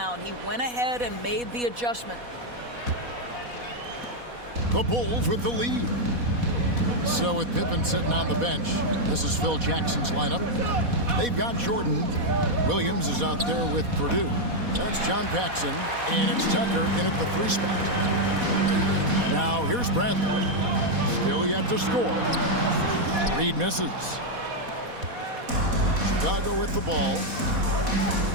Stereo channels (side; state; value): left; late; 4.1 ms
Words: He went ahead and made the adjustment. The Bulls with the lead. So with Pippen sitting on the bench, this is Phil Jackson's lineup. They've got Jordan. Williams is out there with Purdue. That's John Paxson, and it's Tucker in at the 3 spot. Now here's Bradley. Still yet to score. Reed misses. Chicago with the ball.